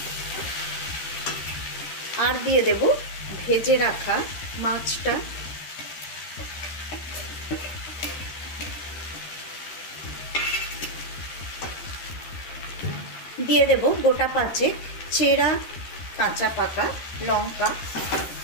আর দিয়ে দেব ভেজে রাখা মাছটা। দিয়ে দেব গোটা 5 চেরা কাঁচা পাকা লঙ্কা।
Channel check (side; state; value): right; late; 13 ms